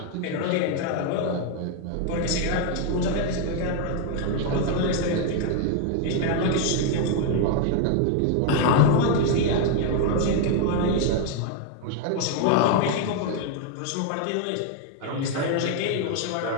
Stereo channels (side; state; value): both; different; correlation 0.01